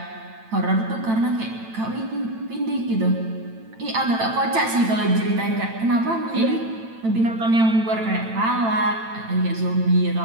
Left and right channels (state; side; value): late; left; 9.0 ms